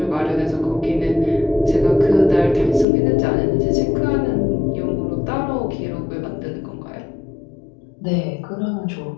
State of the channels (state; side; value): drops out; right; at 2.9 s